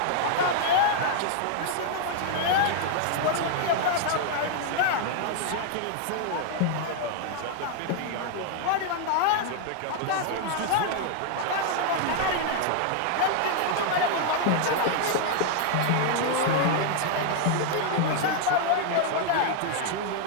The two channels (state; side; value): different; both; correlation 0.00